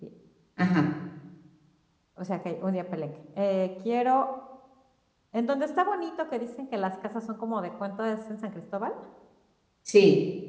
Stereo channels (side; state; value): both; identical; correlation 1.00